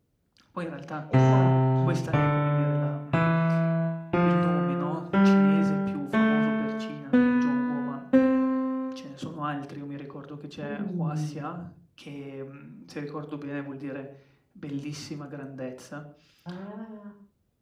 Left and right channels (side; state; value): both; identical; correlation 1.00